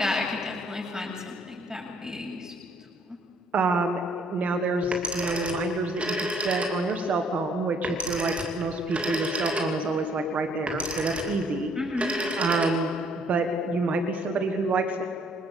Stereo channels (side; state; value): both; normal; correlation 0.63